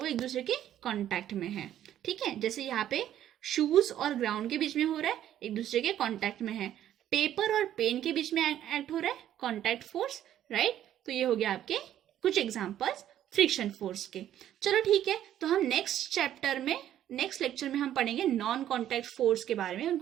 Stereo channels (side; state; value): left; quieter; 11.5 dB